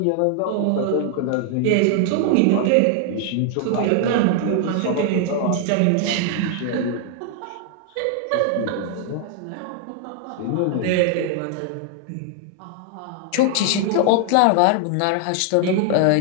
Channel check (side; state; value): both; different; correlation 0.00